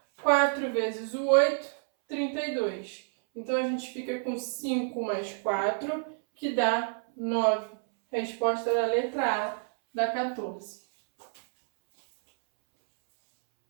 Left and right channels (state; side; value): silent; left; 59 dB below the other